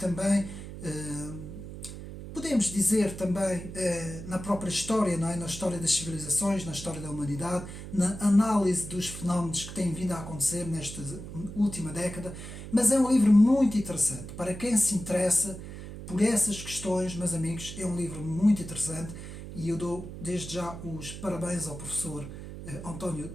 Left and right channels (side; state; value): right; noise; hum, 11 dB below the sound